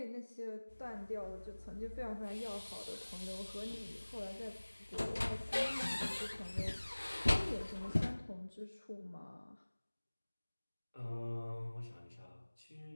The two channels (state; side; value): inverted; both; correlation -1.00